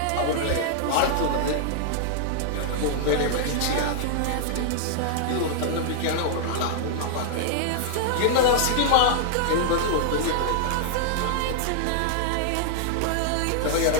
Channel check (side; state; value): both; different; correlation -0.01